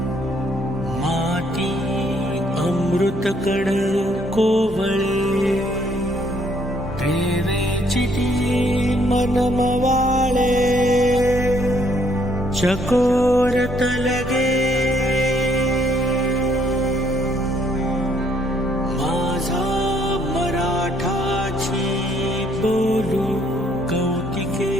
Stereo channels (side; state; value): both; normal; correlation 0.67